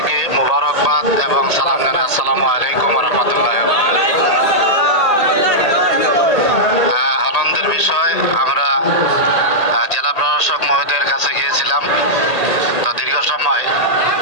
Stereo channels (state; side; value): late; right; 1.8 ms